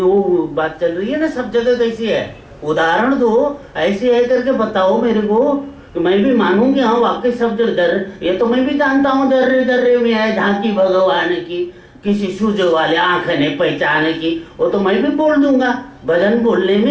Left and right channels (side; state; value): both; identical; correlation 1.00